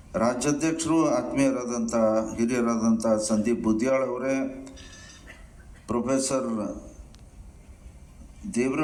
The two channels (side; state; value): both; identical; correlation 1.00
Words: ರಾಜ್ಯಾಧ್ಯಕ್ಷರು ಆತ್ಮೀಯರಾದಂಥ ಹಿರಿಯರಾದಂಥ ಸಂದೀಪ್ ಬುದ್ಯಾಳ್ ಅವರೇ, ಪ್ರೊಫೆಸರ್